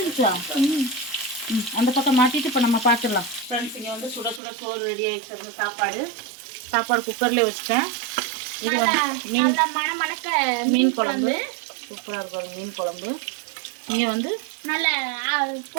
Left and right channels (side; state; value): left; drops out; at 4.4 s